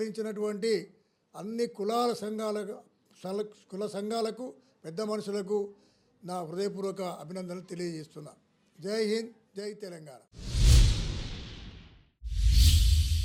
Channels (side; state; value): both; identical; correlation 1.00